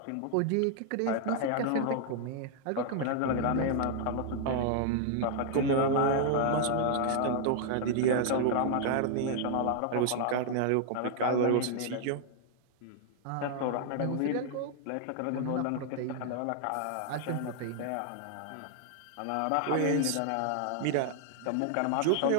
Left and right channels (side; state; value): both; different; correlation 0.00